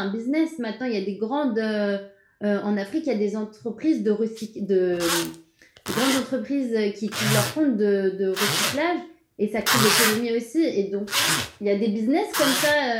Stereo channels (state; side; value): identical; both; correlation 1.00